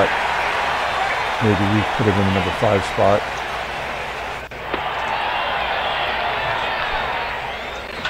Maybe we put him in the number 5 spot.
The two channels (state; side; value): identical; both; correlation 1.00